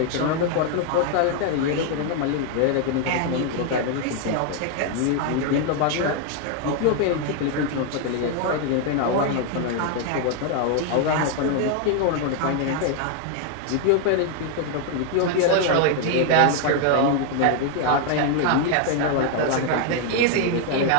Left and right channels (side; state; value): both; different; correlation 0.00